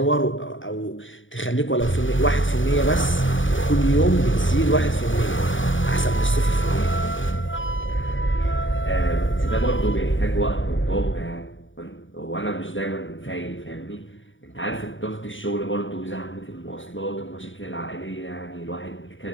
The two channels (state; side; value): late; right; 0.56 ms